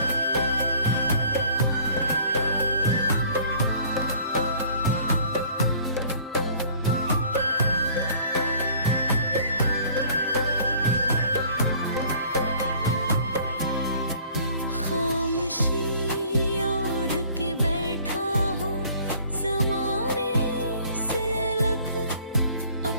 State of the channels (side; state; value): both; inverted; correlation -0.53